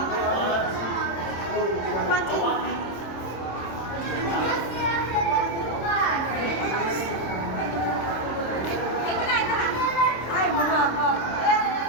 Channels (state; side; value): late; right; 26 ms